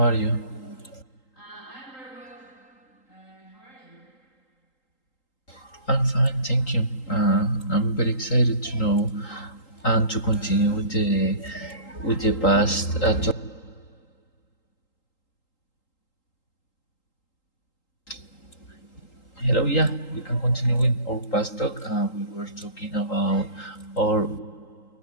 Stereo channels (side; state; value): right; late; 3.8 ms